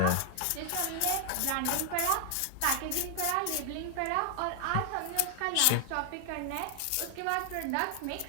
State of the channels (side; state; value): both; different; correlation 0.00